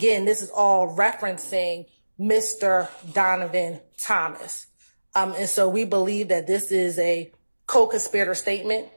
this is all referencing Mr. Donovan Thomas. And so we believe that this is a co-conspirator statement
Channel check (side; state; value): both; inverted; correlation -1.00